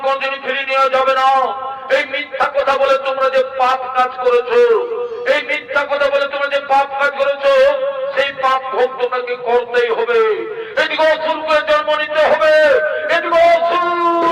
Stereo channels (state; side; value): identical; both; correlation 1.00